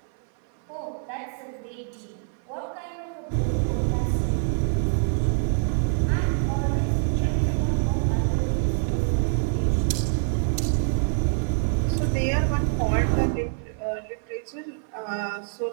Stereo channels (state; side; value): silent; left; 57 dB below the other